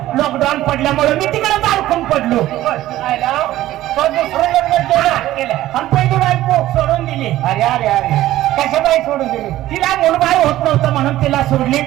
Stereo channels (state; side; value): quieter; left; 14.8 dB